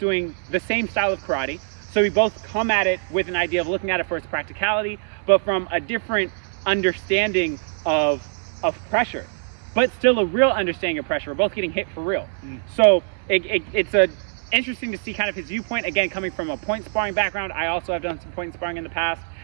the same style of karate. So we both come at it with an idea of looking at it for its practicality, but from a different understanding of pressure, but still a real understanding of pressure. We're both getting hit for real. So it's interesting to see kind of his viewpoint, again, coming from a point sparring background. I also have done some point sparring in the past,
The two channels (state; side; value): silent; left; 62 dB below the other